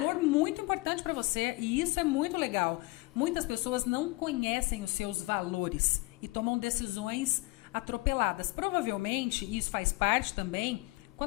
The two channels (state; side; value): quieter; right; 23.0 dB